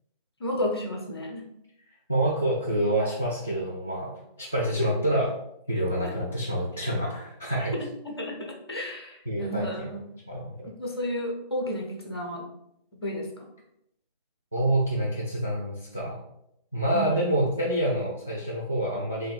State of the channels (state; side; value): inverted; both; correlation -0.49